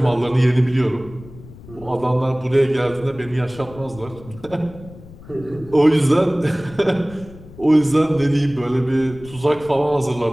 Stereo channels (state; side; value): noise; left; rumble, 19 dB below the sound